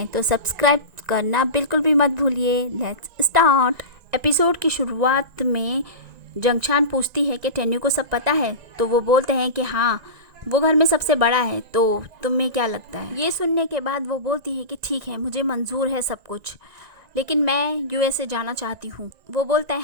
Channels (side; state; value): left; late; 1.9 ms